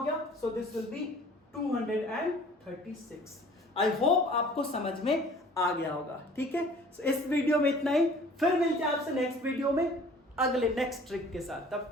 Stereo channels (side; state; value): both; normal; correlation 0.50